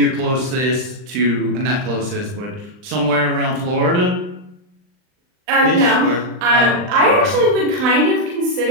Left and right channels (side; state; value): left; late; 39 ms